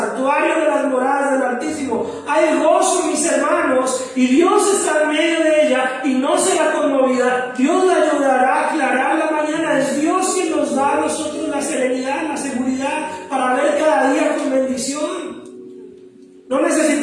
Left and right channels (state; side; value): identical; both; correlation 1.00